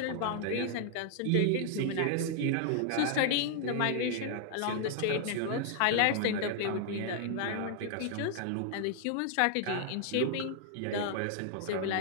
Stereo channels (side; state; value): both; different; correlation 0.00